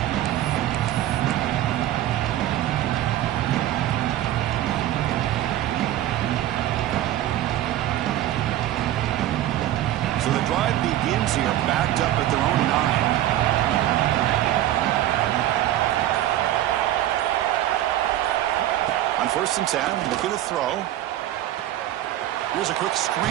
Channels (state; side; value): quieter; left; 13.4 dB